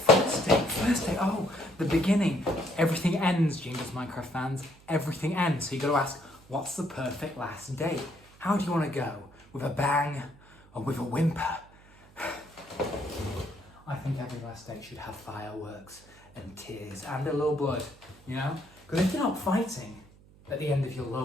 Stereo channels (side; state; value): right; noise; hum, 25 dB below the sound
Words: date, oh, the beginning. Everything ends, genedoesminecraft fans. Everything ends. So you got to ask, what's the perfect last date? How do you want to go? With a bang or with a whimper? I think every last date should have fireworks and tears and a little blood, you know? Because if you're not fighting at the end of your